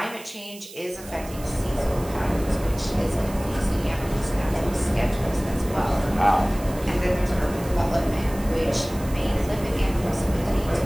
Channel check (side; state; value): right; noise; hiss, 17 dB below the sound